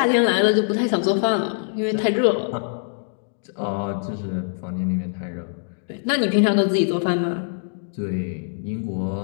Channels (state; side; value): silent; right; digital silence